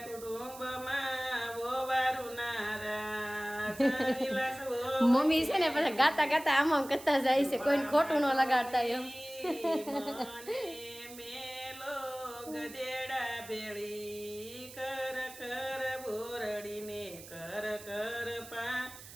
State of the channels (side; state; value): right; noise; hiss, 16 dB below the sound